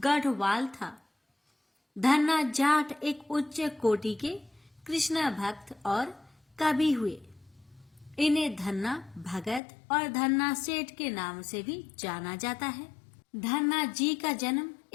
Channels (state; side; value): drops out; right; at 9.6 s